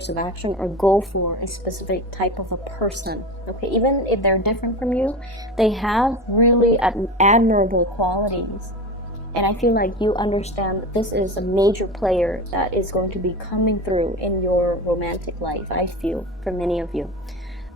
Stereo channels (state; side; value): normal; both; correlation 0.26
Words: of action, or go for a specific type of a person, okay? Even if they're different from you, they have really admirable qualities. And I feel like you understand that this is a major player that is going to be coming through in your romantic life, I feel, for many of you.